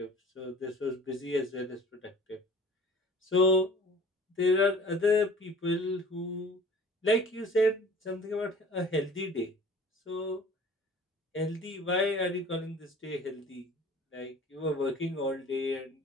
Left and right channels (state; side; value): normal; both; correlation 0.47